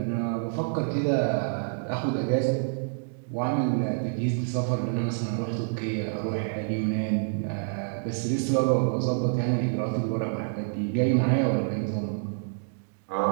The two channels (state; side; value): silent; left; digital silence